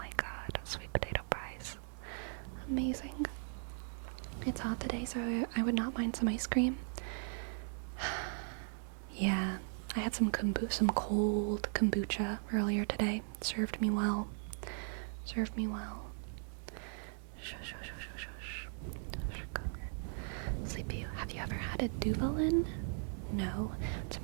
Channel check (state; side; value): silent; left; 52 dB below the other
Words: god, sweet potato fries. Amazing. It's hot today, so I would not mind some ice cream. Yeah, I had some cold kombucha earlier today. Served me well. Sleepy, have you ever had a Duvalin? No. It's a